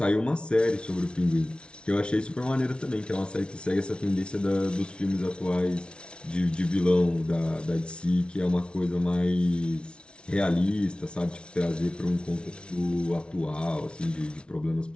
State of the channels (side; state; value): right; late; 0.057 ms